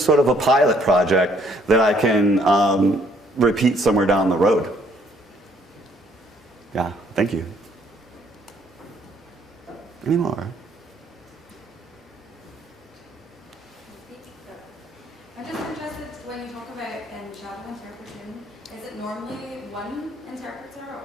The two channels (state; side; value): normal; both; correlation 0.65